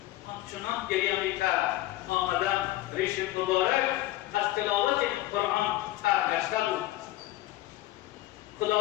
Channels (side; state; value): right; quieter; 16.2 dB